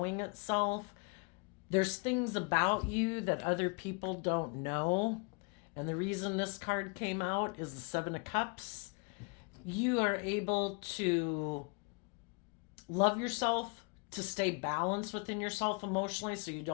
itself. There's things about you that other people don't know. And the reason this card came out is the Seven of Cups. You are able to love yourself, to stay balanced within yourself emotionally so you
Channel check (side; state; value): right; quieter; 32.7 dB